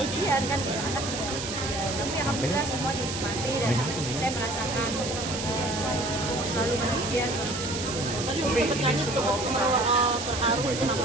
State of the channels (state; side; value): noise; right; hiss, 6 dB below the sound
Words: kan gitu, anak juga ujian. Tapi alhamdulillah semua dinikmati dan saya merasakan selalu bahagia, selalu bersyukur. Tadi Umi bertanya untuk terharu kenapa